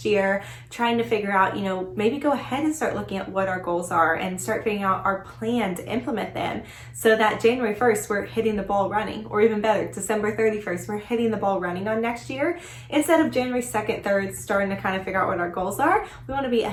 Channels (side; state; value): both; identical; correlation 1.00